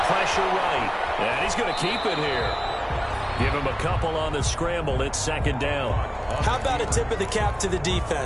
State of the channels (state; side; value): identical; both; correlation 1.00